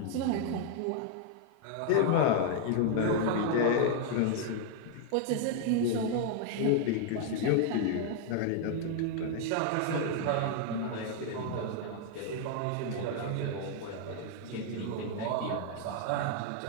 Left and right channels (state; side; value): different; both; correlation 0.00